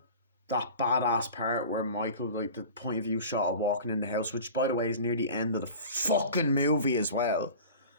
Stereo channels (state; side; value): inverted; both; correlation -0.38